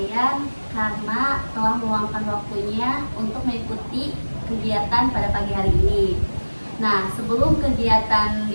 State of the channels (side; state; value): both; inverted; correlation -1.00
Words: karena telah meluangkan waktunya untuk mengikuti kegiatan pada pagi hari ini. Nah, sebelum kegiatan